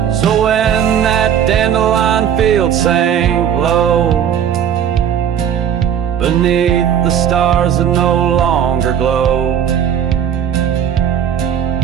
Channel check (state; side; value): quieter; left; 8.9 dB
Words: So when that dandelion field sank low, beneath the stars that no longer glow,